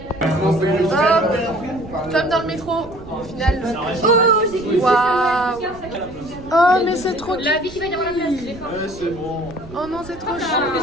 Comme dans le métro, au final. Waouh. Oh mais c'est trop cute. La vie qui va y avoir la place. C'est bon. Oh non c'est trop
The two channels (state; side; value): noise; right; rumble, 17 dB below the sound